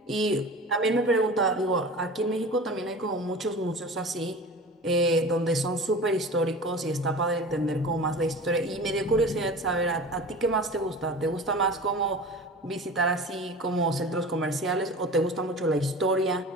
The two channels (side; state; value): both; normal; correlation 0.36